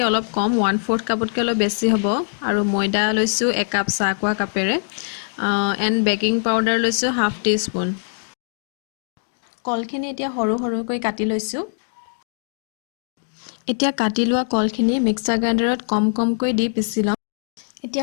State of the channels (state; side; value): silent; right; digital silence